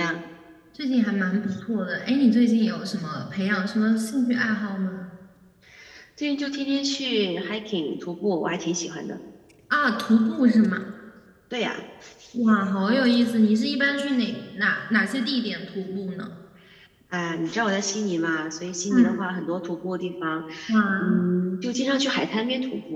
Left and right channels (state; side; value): identical; both; correlation 1.00